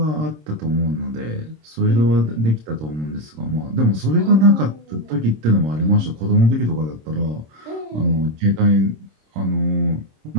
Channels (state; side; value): late; left; 26 ms